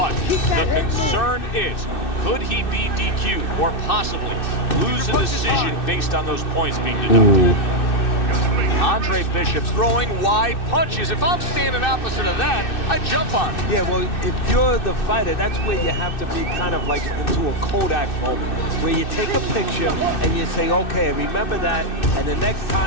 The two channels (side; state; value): right; late; 2.6 ms